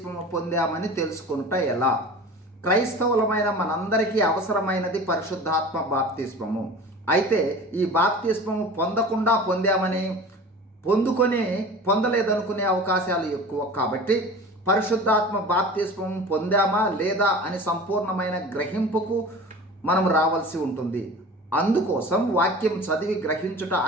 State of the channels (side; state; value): both; normal; correlation 0.38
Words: పొందామని తెలుసుకుంట ఎలా? క్రైస్తవులమైన మనందరికీ అవసరమైనది పరిశుద్ధాత్మ బాప్తిస్మము. అయితే ఈ బాప్తిస్మము పొందకుండా పొందామని, పొందలేదనుకునే అవకాశాలు ఎక్కువ. కాబట్టి పరిశుద్ధాత్మ బాప్తిస్మము పొందామా లేదా అని సంపూర్ణమైన గ్రహింపుకు మనం రావాల్సి ఉంటుంది. అందుకోసం వాక్యం చదివి గ్రహించుట